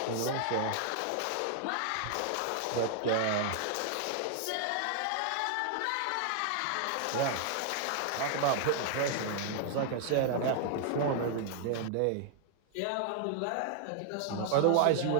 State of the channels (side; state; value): both; different; correlation 0.00